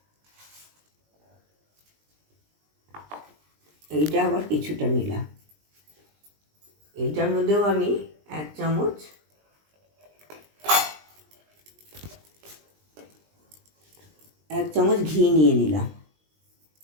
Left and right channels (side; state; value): left; late; 20 ms